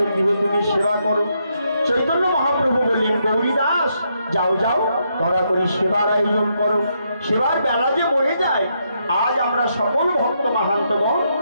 গৃহে তুমি সেবা করো। চৈতন্য মহাপ্রভু বললেন, গৌরী দাস যাও যাও, ধরা করি সেবার আয়োজন করো। সেবার বেলা যে বয়ে যায়, আজ আমরা সকল ভক্ত মাহান্তগণ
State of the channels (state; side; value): inverted; both; correlation -0.78